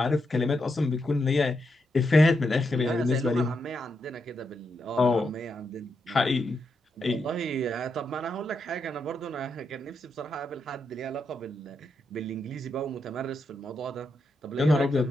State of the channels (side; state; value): both; normal; correlation 0.83